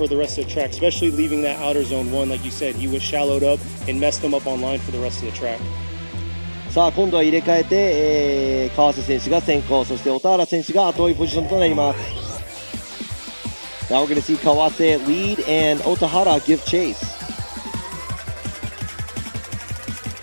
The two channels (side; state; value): both; inverted; correlation -1.00